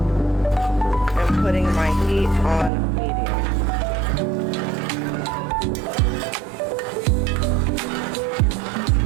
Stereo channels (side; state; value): left; drops out; at 2.7 s